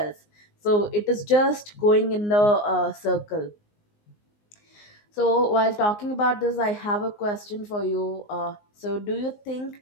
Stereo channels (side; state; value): right; late; 19 ms